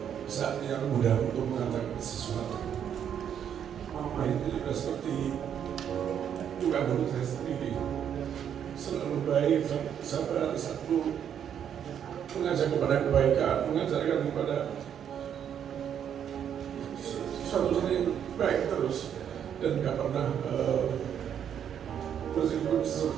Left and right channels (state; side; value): quieter; left; 8.9 dB